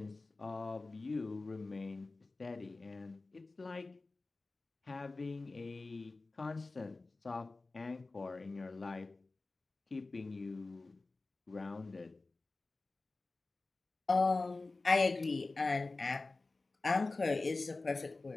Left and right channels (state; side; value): quieter; right; 3.4 dB